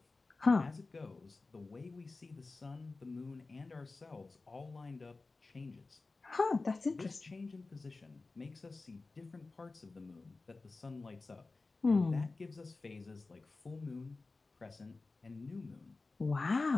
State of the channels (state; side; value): quieter; right; 3.6 dB